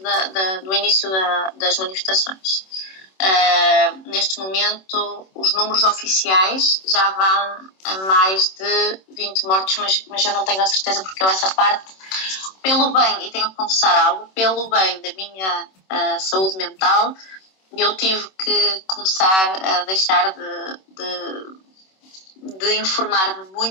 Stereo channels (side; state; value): right; late; 26 ms